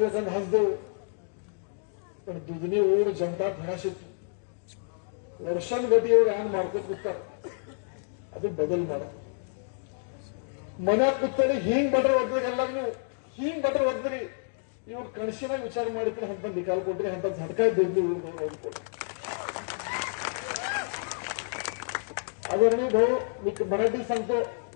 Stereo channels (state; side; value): silent; right; digital silence